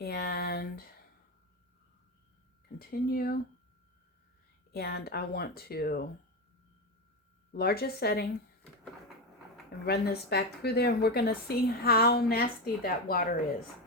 continue. And I want to largest setting and run this back through there. And we're going to see how nasty that water is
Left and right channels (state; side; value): normal; both; correlation 0.15